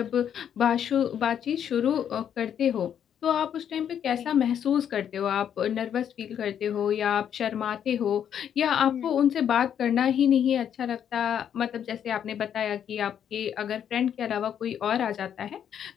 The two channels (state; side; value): quieter; right; 9.0 dB